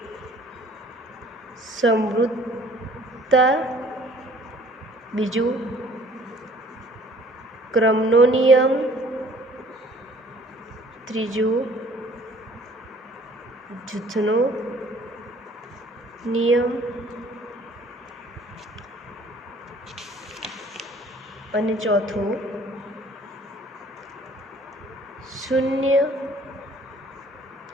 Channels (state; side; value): normal; both; correlation 0.54